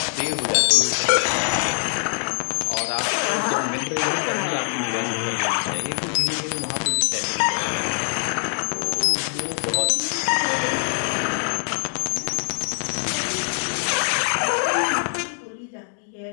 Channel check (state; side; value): silent; right; digital silence